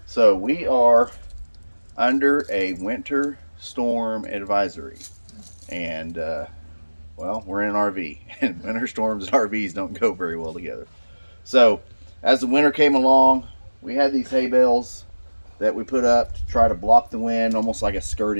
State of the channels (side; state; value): both; inverted; correlation -1.00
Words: So we are under a winter storm advisory, and well, we're in an RV, and winter storms and RVs don't go very well together. So as the winter came along, we had these hay bales that we put up to try to block the wind, almost like a